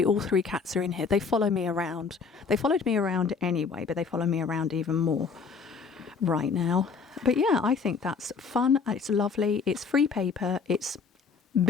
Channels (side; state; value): right; quieter; 5.2 dB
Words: all 3 cats are in here. They follow me around. They followed me around anyway, but they follow me around even more right now. But yeah, I think that's fun. It's lovely. It's free paper. It's